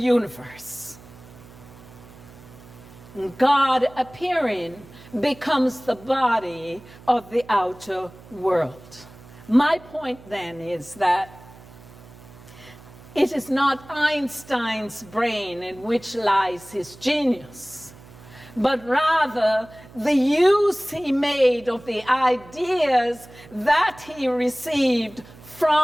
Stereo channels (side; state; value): right; noise; hum, 21 dB below the sound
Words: God appearing becomes the body of the outer world. My point then is that it is not Einstein's brain in which lies his genius, but rather the use he made of the ideas that he received